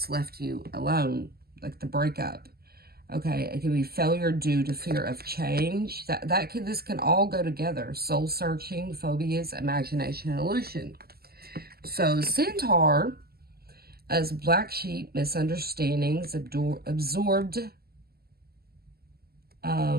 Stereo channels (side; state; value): left; late; 0.45 ms